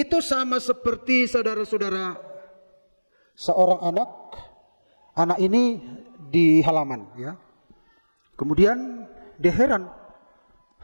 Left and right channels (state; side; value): inverted; both; correlation -1.00